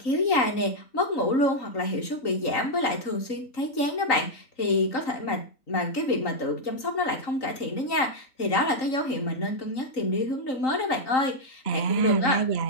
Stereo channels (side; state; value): right; late; 3.8 ms